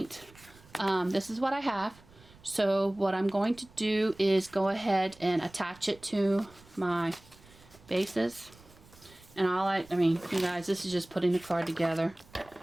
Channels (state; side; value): noise; right; rumble, 25 dB below the sound